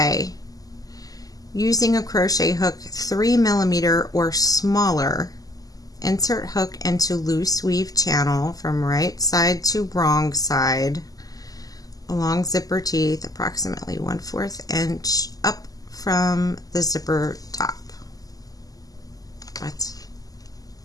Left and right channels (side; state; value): right; late; 0.17 ms